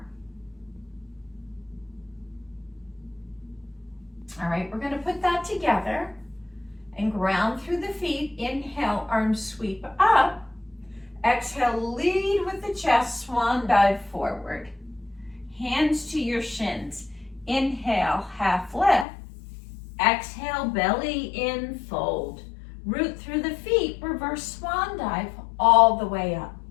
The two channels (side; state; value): right; drops out; at 19.1 s